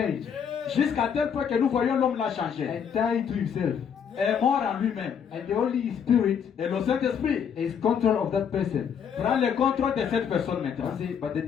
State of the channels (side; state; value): right; quieter; 7.6 dB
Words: jusqu'à tel point que nous voyons l'homme là changer, and died to himself. est mort en lui-même. And the Holy Spirit Et le Saint-Esprit is control of that person. prend le contrôle de cette personne maintenant. I say, but they